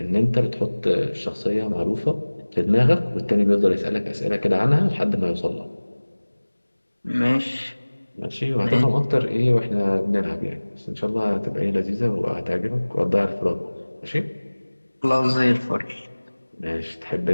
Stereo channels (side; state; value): both; inverted; correlation -1.00